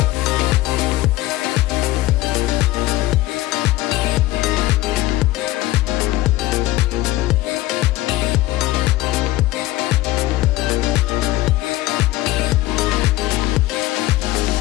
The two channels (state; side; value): quieter; right; 17.0 dB